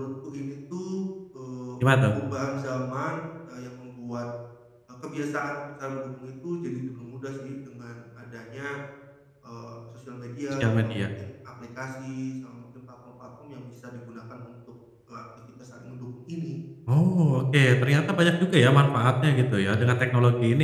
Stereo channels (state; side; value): identical; both; correlation 1.00